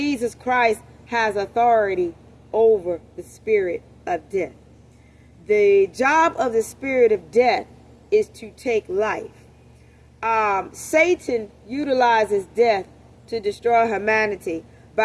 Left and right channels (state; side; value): identical; both; correlation 1.00